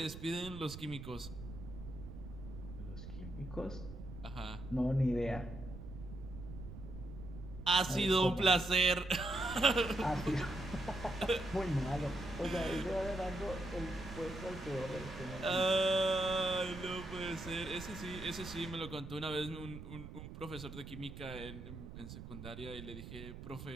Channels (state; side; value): noise; right; rumble, 11 dB below the sound